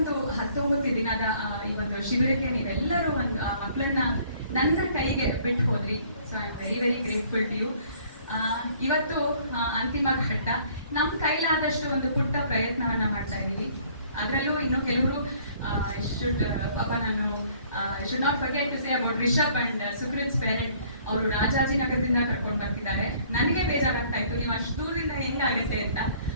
19 ದಿನದ ಈ ಒಂದು ಶಿಬಿರಕ್ಕೆ ನೀವೆಲ್ಲರೂ ಒಂದು ಆ ಮಕ್ಕಳನ್ನ ನನ್ನ ಕೈಗೆ ಬಿಟ್ಟು ಹೋದ್ರಿ. So I am very very grateful to you. ಇವತ್ತು ಅಂತಿಮ ಘಟ್ಟ. ನಮ್ಮ ಕೈಲಾದಷ್ಟು ಒಂದು ಪುಟ್ಟ ಪ್ರಯತ್ನವನ್ನ ಮಾಡ್ತಾ ಇದ್ದೀವಿ. ಅದರಲ್ಲೂ ಇನ್ನು ಕೆಲವರು ಪಾಪ ನಾನು should not forget to say about Rishab and Sukruth's parent. ಅವರು ರಾಜಾಜಿನಗರದಿಂದ ಕರ್ಕೊಂಡು ಬರ್ತಿದ್ದಾರೆ. ನನಗೆ ಬೇಜಾರಾಗ್ತಾ ಇತ್ತು ನೀವು ಅಷ್ಟು ದೂರದಿಂದ ಹೆಂಗಾಗತ್ತೆ ಅಂತ.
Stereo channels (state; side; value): inverted; both; correlation -0.58